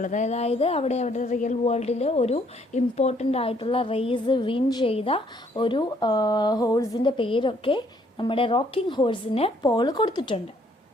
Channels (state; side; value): normal; both; correlation 0.66